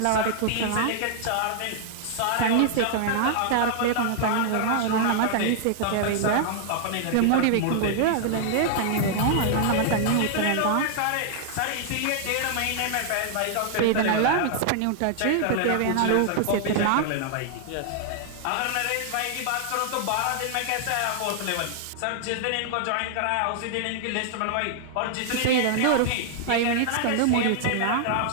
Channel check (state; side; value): different; both; correlation -0.01